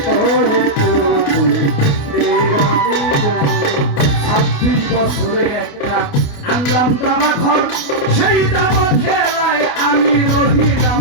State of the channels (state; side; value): late; right; 29 ms